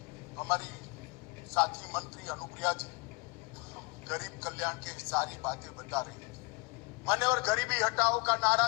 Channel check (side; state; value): right; quieter; 28.2 dB